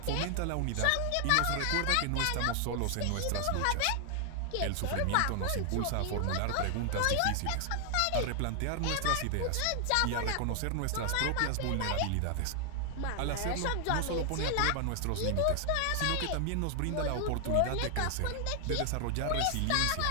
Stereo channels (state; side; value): different; both; correlation 0.00